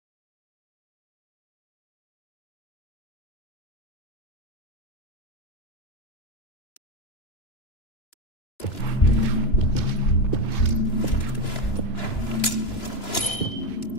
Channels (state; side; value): late; right; 2.9 ms